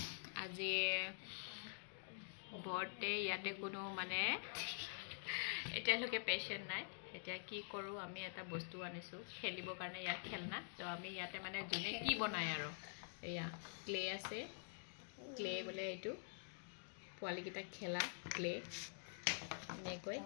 আজি बर्थडे ইয়াতে কোনো মানে এতিয়ালৈকে পেশেন্ট নাই এতিয়া কি কৰো আমি এটা বস্তু আনিছো খেলিবৰ কাৰণে ইয়াত খেলনা তো আমি ইয়াতে মানে জুনে কি বনায় আৰু এয়া ক্লে আছে ক্লে বলে এটো পোৱালি কিটা খেলা ক্লে নে কই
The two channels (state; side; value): silent; right; digital silence